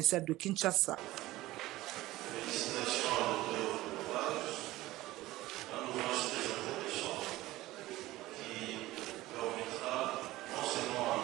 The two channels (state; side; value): quieter; left; 17.3 dB